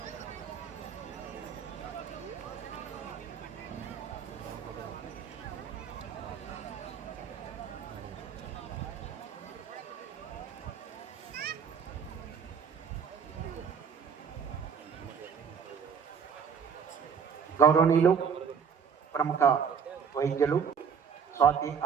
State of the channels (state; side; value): quieter; left; 6.9 dB